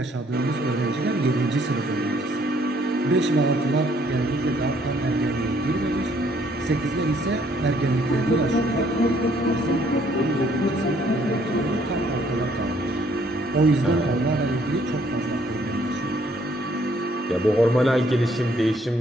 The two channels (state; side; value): normal; both; correlation 0.65